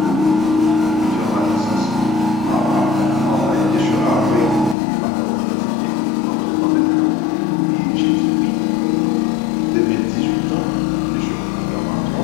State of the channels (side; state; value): right; drops out; at 4.8 s